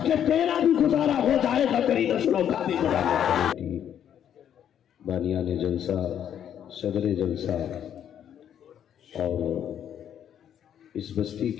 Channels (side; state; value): right; quieter; 9.6 dB